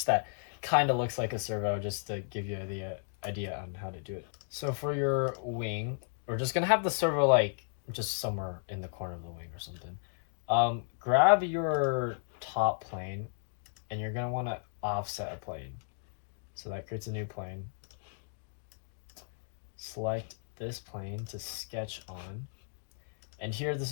that kind of looks like a servo just to give you the idea on how to do it. So for your wing, we're just gonna have the servo like just somewhere in the corner of the wing or something. Grab your top plane and you're gonna want to offset a plane. So that creates a new plane. Select this plane to sketch on. And here, this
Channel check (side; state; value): right; silent; digital silence